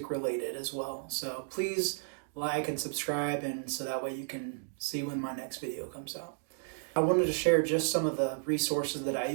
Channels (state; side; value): silent; left; digital silence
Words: related as well. So please like and subscribe, and so that way you can see when my next video comes out. I wanted to share just some of the resources that I